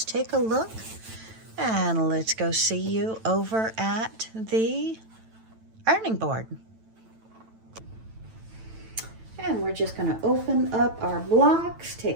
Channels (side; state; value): left; late; 9.0 ms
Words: take a look. And let's go see you over at the ironing board. And we're just going to open up our blocks,